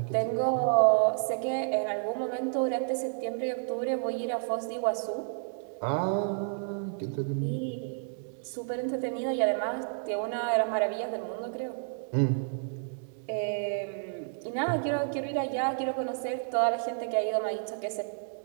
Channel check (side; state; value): left; silent; digital silence